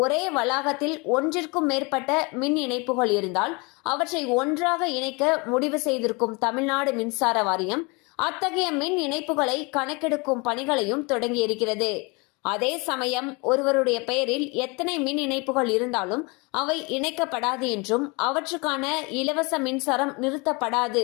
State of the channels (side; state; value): right; quieter; 28.5 dB